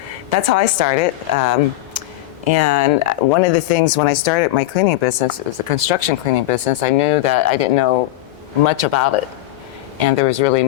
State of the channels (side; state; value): right; quieter; 16.4 dB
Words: that's how I started. And one of the things when I started my cleaning business, it was a construction cleaning business, I knew that I didn't know much about it. And there was really